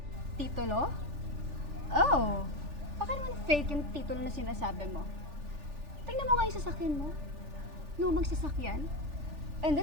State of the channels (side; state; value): left; late; 3.4 ms